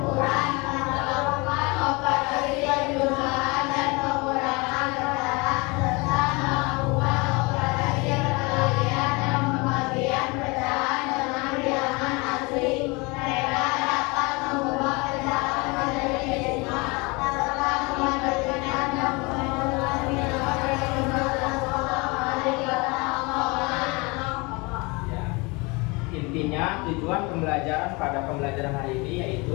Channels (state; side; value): quieter; right; 27.0 dB